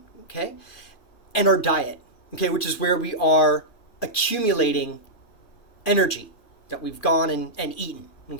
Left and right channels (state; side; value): late; right; 2.4 ms